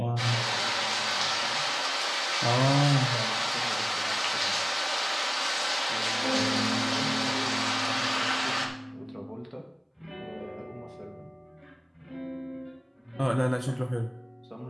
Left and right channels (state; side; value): identical; both; correlation 1.00